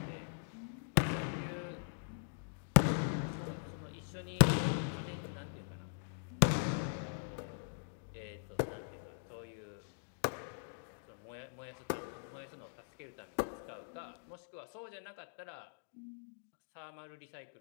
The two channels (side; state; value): right; silent; digital silence